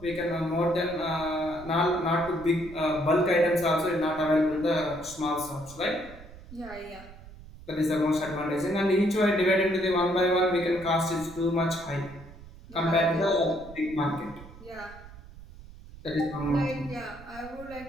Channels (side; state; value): right; noise; rumble, 18 dB below the sound